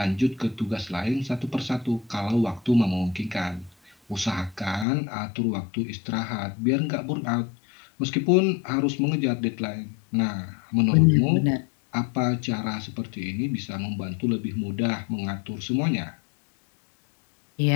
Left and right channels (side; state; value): right; drops out; at 4.9 s